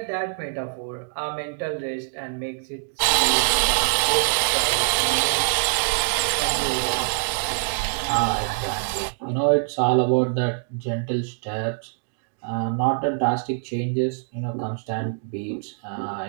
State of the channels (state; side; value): silent; left; digital silence